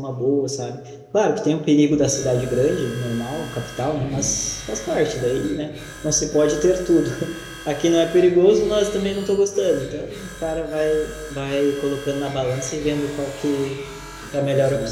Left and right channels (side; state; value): both; identical; correlation 1.00